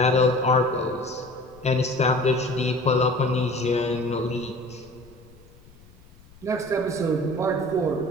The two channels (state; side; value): noise; left; rumble, 25 dB below the sound